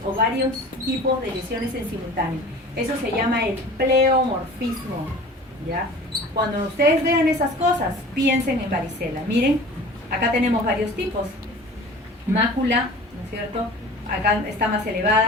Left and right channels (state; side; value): normal; both; correlation 0.41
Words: o varios tipos de lesiones en simultáneo. Eso se llama el pleomorfismo, ¿ya? Cuando ustedes vean esas cosas, piensen en varicela. Miren, acá tenemos varios tipos. Mácula, ¿no es cierto? Acá está más